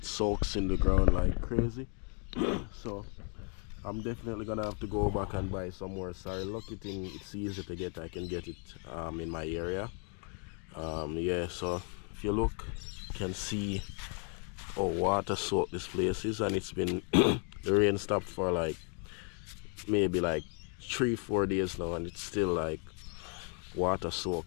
soaks in the ground like crazy. So I'm definitely gonna have to go back and buy some more sorrel. Lucky thing, it's easy to get. I can get it in my area. Yeah, so if you look, you can see how water soaked this place is, and it's been the rain stopped for like maybe like 3-4 days now, and it's still like water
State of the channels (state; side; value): quieter; right; 39.8 dB